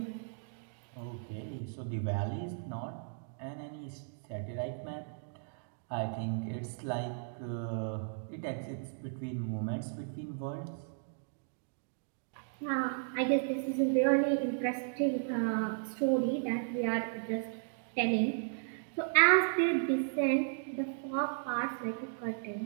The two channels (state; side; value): silent; left; digital silence